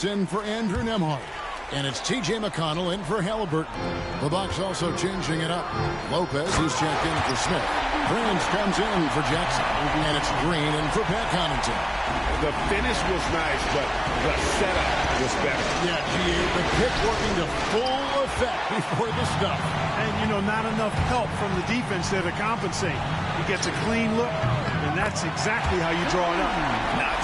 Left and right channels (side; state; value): both; identical; correlation 1.00